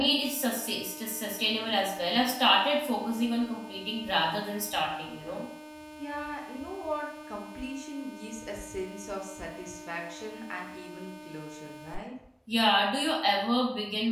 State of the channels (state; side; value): identical; both; correlation 1.00